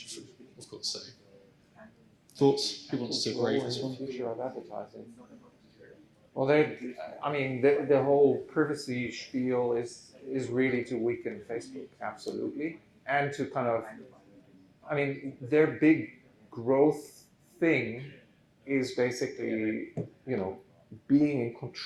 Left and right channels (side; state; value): both; identical; correlation 1.00